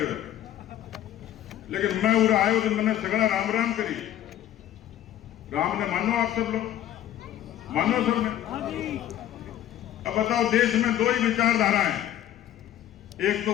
लेकिन मैं उधर आयो तो मैंने सगड़ा राम राम करी। राम ने मानो, आप सब लोग मानो सब ने। अब बताओ, देश में दो ही विचारधारा है, एक तो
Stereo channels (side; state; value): right; quieter; 11.9 dB